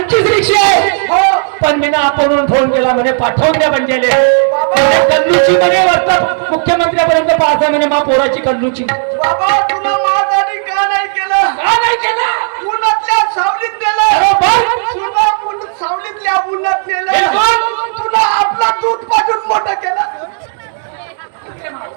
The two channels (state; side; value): silent; left; digital silence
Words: रिक्षे हो. पण मी ना आपण फोन केला म्हणे पाठवून द्या म्हणजे कल्लूची म्हणे वाजता मुख्यमंत्र्यापर्यंत पास आहे म्हणे मा पोराची कल्लूची. बाबा तुला माझ्यासाठी का नाही केलं? का नाही केलं? उन्हातल्या सावलीत नेलं. तुला सावलीतल्या उन्हात नेलं. तुला आपला दूध पाजून मोठं केलं.